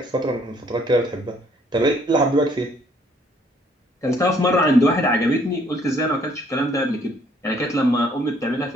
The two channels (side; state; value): both; normal; correlation 0.63